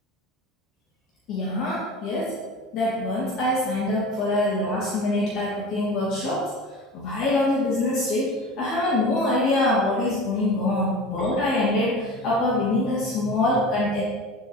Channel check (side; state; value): both; normal; correlation 0.35